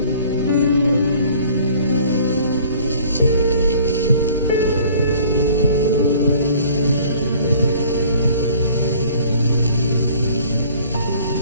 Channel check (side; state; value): both; inverted; correlation -0.53